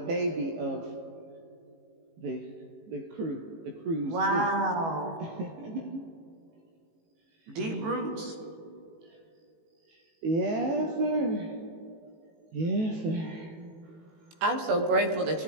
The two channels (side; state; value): left; late; 18 ms